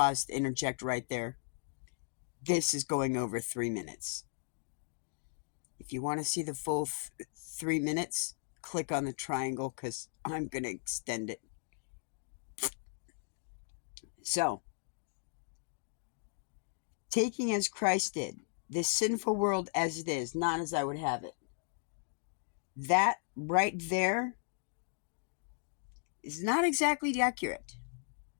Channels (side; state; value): right; silent; digital silence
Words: to interject right there. This is going over 3 minutes. If you want to see the full 3 minutes, click on the triangle because I'm going to extend it. So, taking as Christ did, this sinful world as it is, not as I would have it. That right there is not exactly accurate.